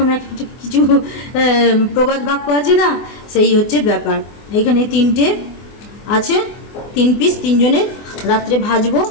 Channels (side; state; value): right; late; 24 ms